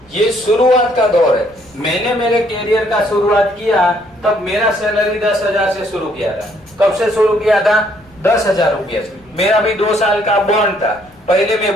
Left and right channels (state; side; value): noise; right; rumble, 28 dB below the sound